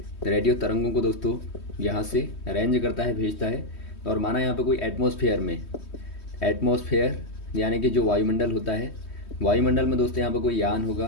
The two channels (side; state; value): right; late; 3.2 ms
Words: रेडियो तरंगों को दोस्तों यहाँ से रेंज करता है, भेजता है। और माना यहाँ पे कोई एटमॉस्फेयर में, एटमॉस्फेयर यानी कि जो वायुमंडल होता है, वायुमंडल में दोस्तों यहाँ पे कोई यान